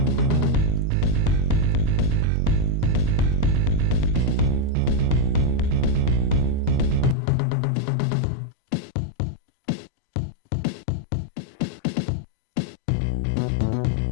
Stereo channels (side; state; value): right; drops out; at 7.2 s